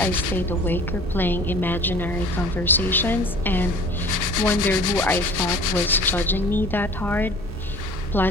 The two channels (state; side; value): normal; both; correlation 0.46